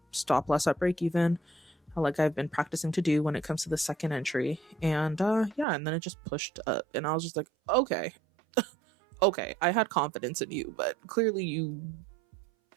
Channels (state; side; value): drops out; left; at 5.7 s